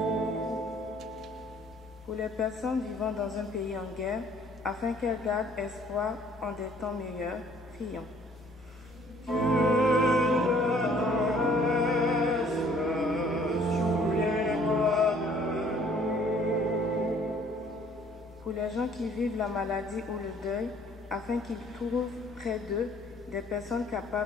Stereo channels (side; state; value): both; normal; correlation 0.58